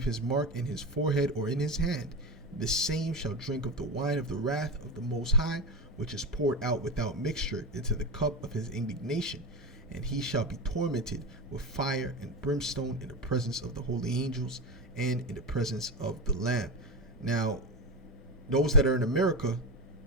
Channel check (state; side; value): normal; both; correlation 0.19